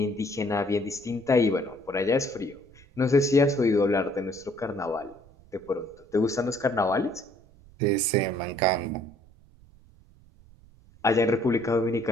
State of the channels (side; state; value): right; noise; rumble, 26 dB below the sound